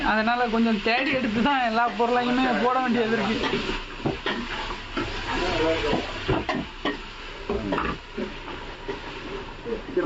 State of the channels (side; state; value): both; identical; correlation 1.00